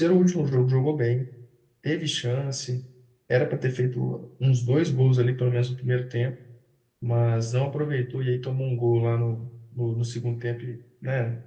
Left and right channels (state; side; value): identical; both; correlation 1.00